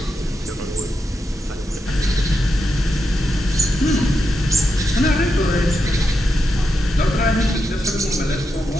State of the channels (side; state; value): both; normal; correlation 0.86